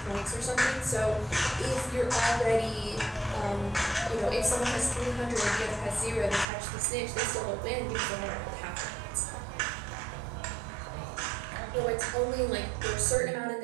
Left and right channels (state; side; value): drops out; left; at 6.5 s